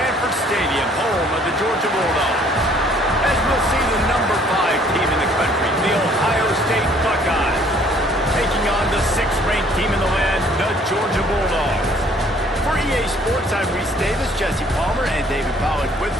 Stadium, home of the Georgia Bulldogs. As we'll see the number 5 team in the country, the Ohio State Buckeyes, taking on the 6th-ranked team in the land, the Georgia Bulldogs. For EA Sports, I'm Reese Davis, Jesse Palmer, and David Pollack with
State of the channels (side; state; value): both; normal; correlation 0.59